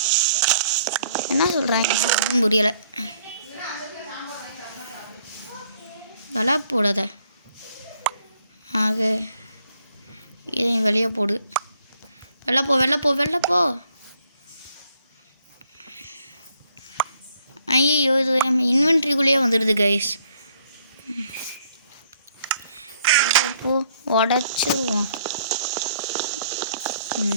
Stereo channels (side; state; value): both; inverted; correlation -0.67